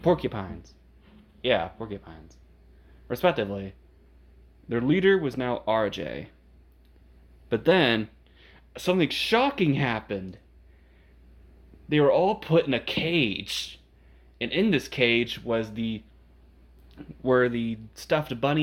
porcupines. Yeah, porcupines. Respectively. Their leader was now RJ. But then, something shocking happened. They were all put in a cage. And in this cage were the stuffed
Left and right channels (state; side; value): identical; both; correlation 1.00